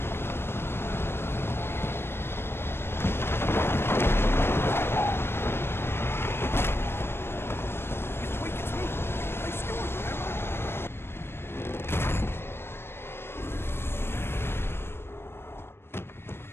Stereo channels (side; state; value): right; late; 0.12 ms